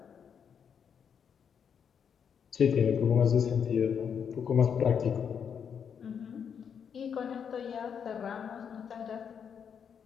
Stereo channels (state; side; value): quieter; right; 7.4 dB